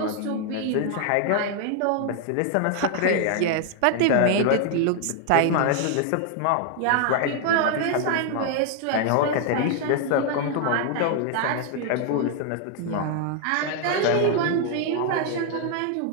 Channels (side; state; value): both; different; correlation 0.00